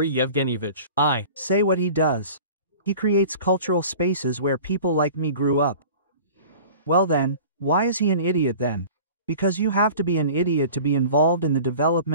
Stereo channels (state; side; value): inverted; both; correlation -0.42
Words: Yevgenyevich? Say what he does. He creates cultural spaces where people like me grew up. Well then, why is he an idiot then? Because you have to be an idiot to be involved in the